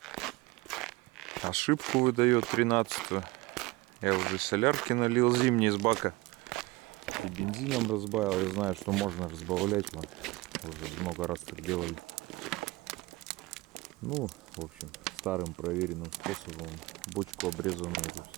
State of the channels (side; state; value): left; quieter; 22.2 dB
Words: Ошибку выдает 13-ю. Я уже солярки налил зимний из бака. И бензином разбавил. Я знаю, что можно разбавлять. Мы уже много раз так делали. Ну, в общем, старым проверенным способом. Бочку обрезанную тут